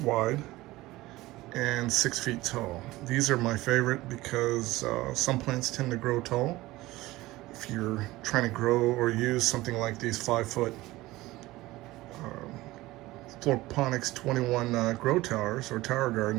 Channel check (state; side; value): quieter; left; 18.5 dB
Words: wide, and 6 feet tall. These are my favorite because some plants tend to grow tall. If you're trying to grow or use something like these 5-foot Floorponics 21 grow towers or tower